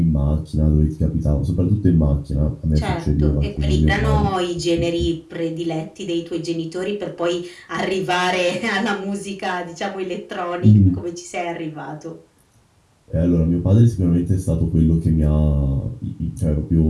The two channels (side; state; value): both; identical; correlation 1.00